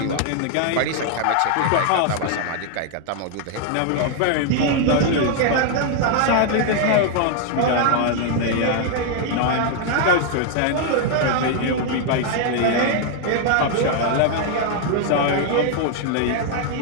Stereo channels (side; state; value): both; different; correlation 0.00